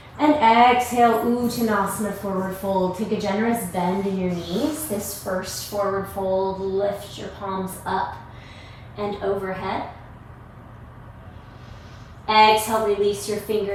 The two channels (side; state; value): both; identical; correlation 1.00